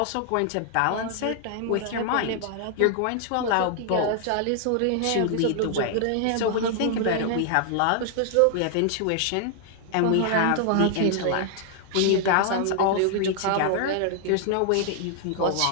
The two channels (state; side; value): different; both; correlation 0.00